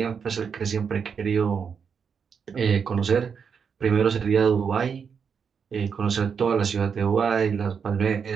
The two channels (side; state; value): left; quieter; 6.5 dB